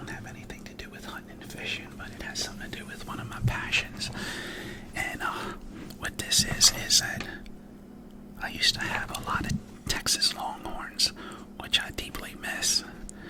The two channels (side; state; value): both; identical; correlation 1.00